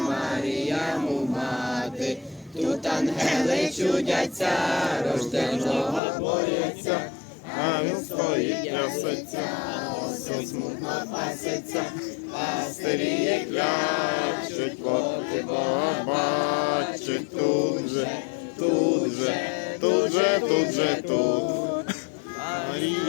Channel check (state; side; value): drops out; right; at 6.0 s